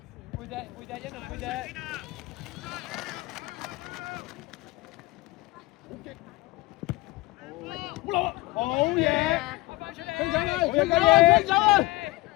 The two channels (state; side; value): quieter; right; 20.6 dB